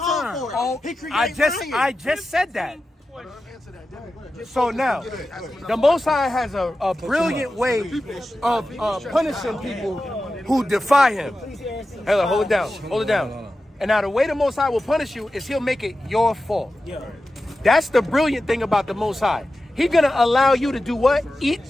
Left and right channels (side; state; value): both; normal; correlation 0.93